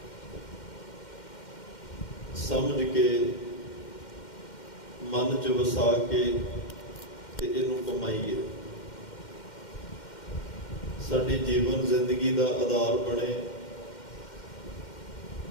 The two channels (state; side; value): late; right; 2.1 ms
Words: ਸਮਝ ਕੇ, ਮਨ 'ਚ ਵਸਾ ਕੇ ਤੇ ਇਹਨੂੰ ਕਮਾਈਏ। ਸਾਡੀ ਜੀਵਨ ਜ਼ਿੰਦਗੀ ਦਾ ਆਧਾਰ ਬਣੇ।